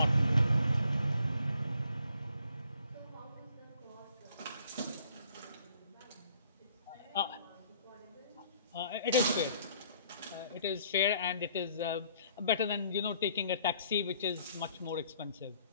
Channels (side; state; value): both; inverted; correlation -0.61